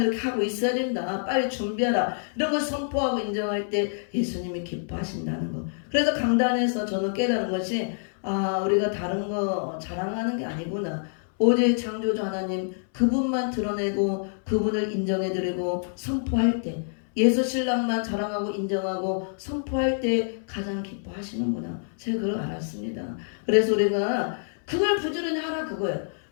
이렇게 하고 있어야 된다. 빨리 준비하라. 이런 걸 선포하고 인정할 때 예수님이 기뻐하신다는 거. 그래서 강단에서 저는 깨달은 것이 우리가 다른 거 자랑하는 게 아니구나. 오직 창조주 하나님 그분만 드러내고 그분을 인정해드리고 선포할 때 예수 신랑만 자랑하고 인정하고 선포할 때 가장 기뻐하시는구나. 제가 그걸 알았습니다. 그래서 우리가 그걸 부지런히 하라 그거예요.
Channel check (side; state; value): right; silent; 60 dB below the other